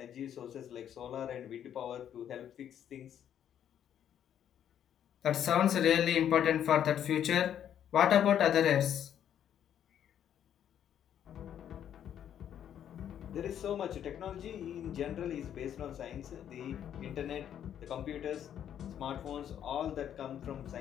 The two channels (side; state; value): right; quieter; 9.8 dB